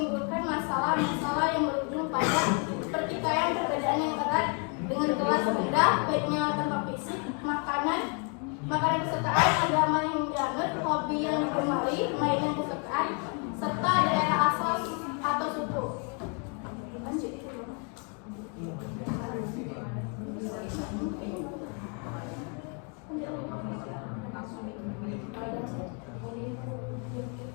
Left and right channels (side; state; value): right; quieter; 37.7 dB